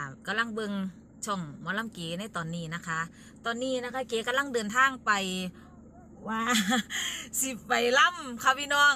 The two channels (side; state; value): both; identical; correlation 1.00